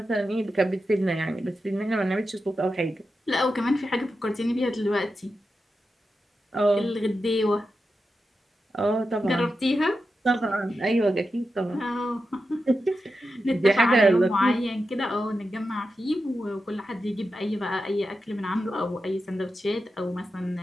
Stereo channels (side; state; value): both; normal; correlation 0.90